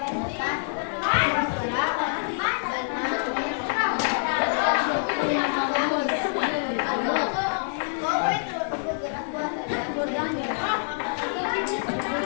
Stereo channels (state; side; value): silent; right; 61 dB below the other